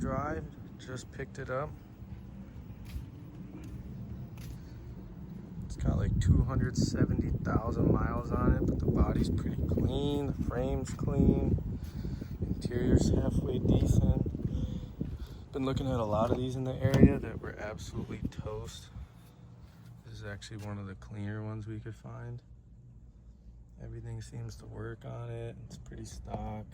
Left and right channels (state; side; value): identical; both; correlation 1.00